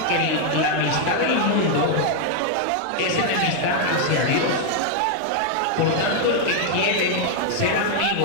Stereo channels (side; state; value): both; different; correlation 0.00